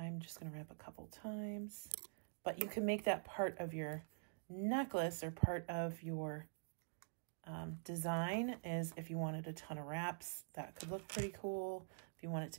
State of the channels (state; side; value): silent; left; digital silence